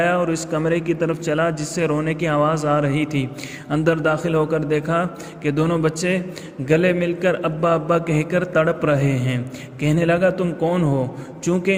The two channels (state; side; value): identical; both; correlation 1.00